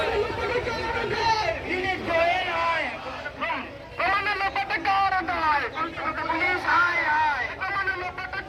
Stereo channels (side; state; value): both; identical; correlation 1.00